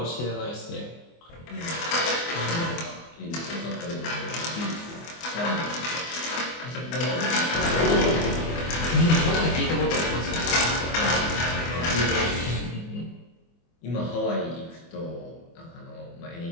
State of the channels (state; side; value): late; right; 24 ms